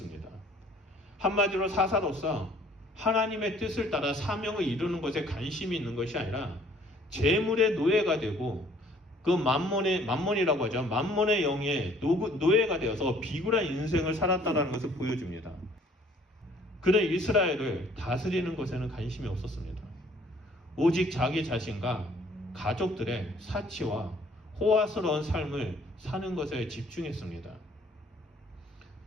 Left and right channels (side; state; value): both; normal; correlation 0.58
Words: 한마디로 사사로서 하나님의 뜻을 따라 사명을 이루는 것에 관심이 있는 것이 아니라 재물의 노예가 되고 그 만몬이라고 하죠. 만몬의 영의 노예가 되어서 비굴한 인생을 살았다는 것을 보여줍니다. 그는 이스라엘을 다스리는 것에는 관심이 없었습니다. 오직 자기 자신과 가족들의 사치와 호화스러운 삶을 사는 것에 집중했습니다.